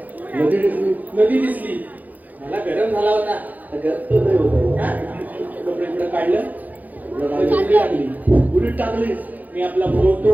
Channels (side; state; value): left; late; 0.081 ms